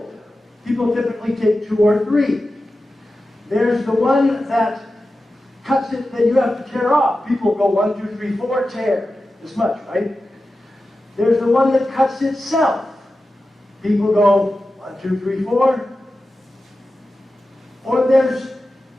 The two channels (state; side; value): normal; both; correlation 0.93